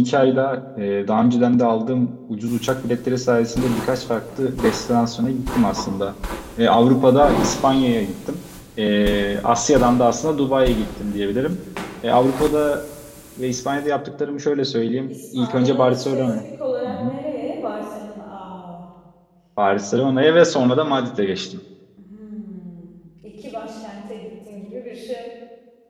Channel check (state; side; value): identical; both; correlation 1.00